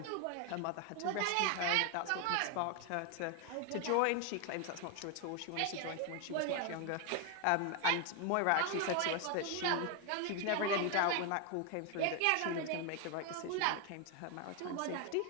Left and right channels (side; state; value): both; different; correlation 0.01